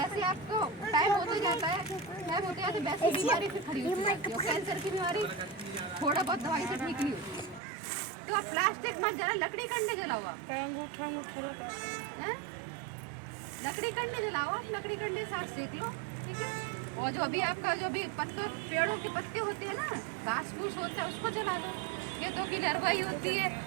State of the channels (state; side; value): drops out; left; at 7.6 s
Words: आपको टाइम होते जाता है, वैसी बीमारी फिर खड़ी होती जाती है। कैंसर की बीमारी थोड़ा बहुत दवाई से ठीक नहीं होती। तो आप प्लास्टिक मत जला, लकड़ी कंडे जलाओ आप, लकड़ी कंडे जलाओ आप, लकड़ी कंडे साथ सेक लो, ठीक है। और जो भी आपका जो भी पत्तों, पेड़ों के पत्ते होते हैं ना, घास फूस होता है, उसको जला दो। खेतों की नरवाई होती है,